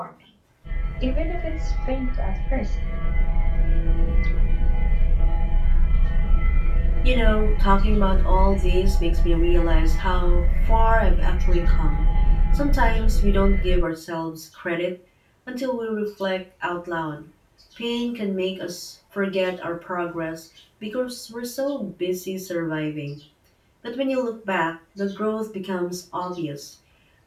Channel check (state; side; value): identical; both; correlation 1.00